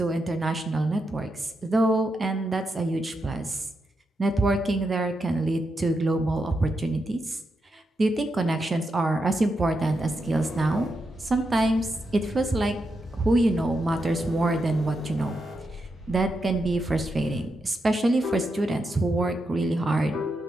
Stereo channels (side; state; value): both; normal; correlation 0.85